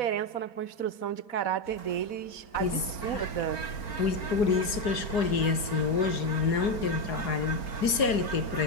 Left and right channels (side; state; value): right; late; 4.8 ms